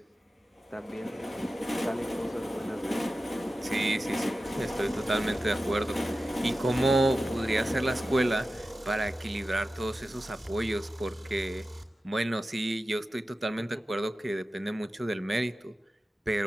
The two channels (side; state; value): both; normal; correlation 0.94